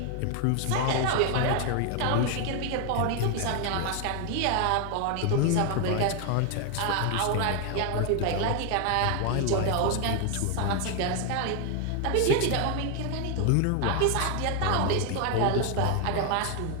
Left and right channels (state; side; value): different; both; correlation 0.01